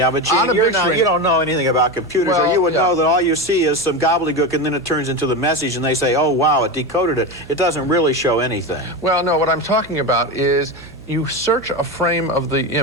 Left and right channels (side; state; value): right; noise; hum, 20 dB below the sound